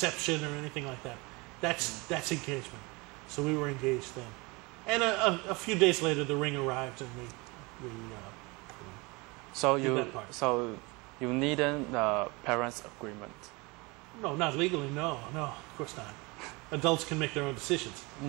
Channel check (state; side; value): quieter; left; 26.2 dB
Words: or anything like that. That's engagement. So we were engaged then. And a few days later, the ring arrived, and we So did you that part. so you needed the parents' agreement. No, not legally. No, of course not. Adults can make their own decisions.